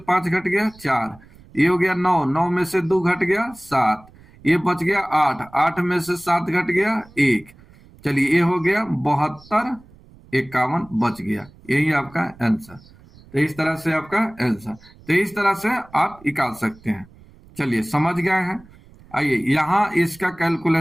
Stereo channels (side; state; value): right; noise; rumble, 25 dB below the sound